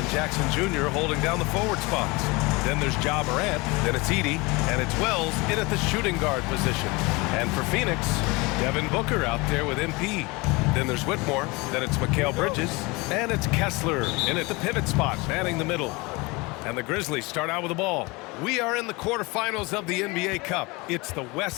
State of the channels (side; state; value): right; quieter; 25.1 dB